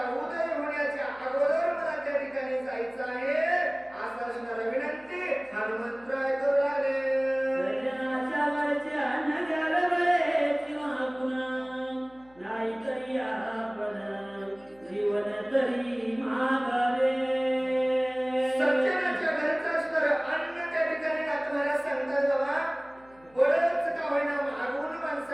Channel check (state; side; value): noise; left; hum, 29 dB below the sound